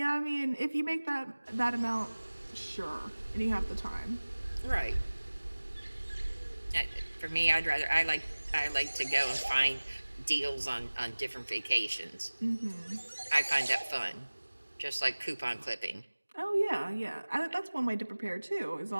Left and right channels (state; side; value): inverted; both; correlation -1.00